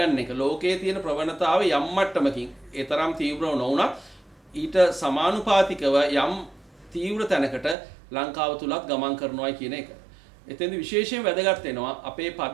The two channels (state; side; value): drops out; left; at 7.8 s